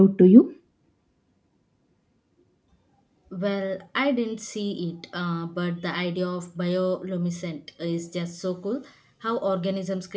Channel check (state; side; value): identical; both; correlation 1.00